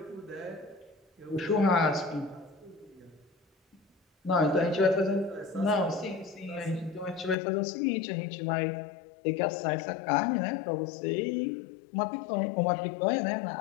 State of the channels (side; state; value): right; drops out; at 7.4 s